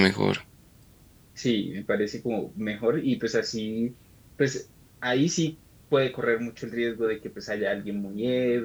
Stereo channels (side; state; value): both; identical; correlation 1.00